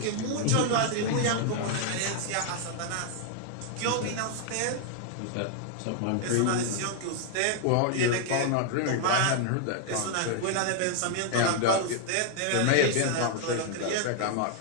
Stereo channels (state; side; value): different; both; correlation 0.00